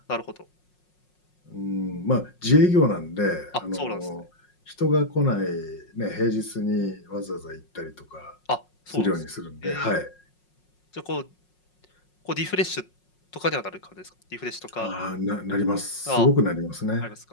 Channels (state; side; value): late; right; 5.5 ms